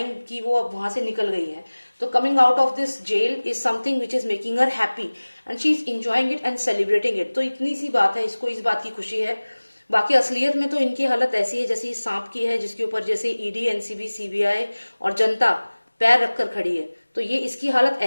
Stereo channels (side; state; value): both; inverted; correlation -1.00